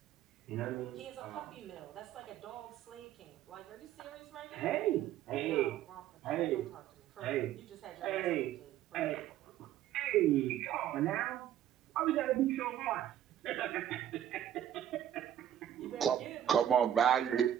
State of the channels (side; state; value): left; quieter; 11.0 dB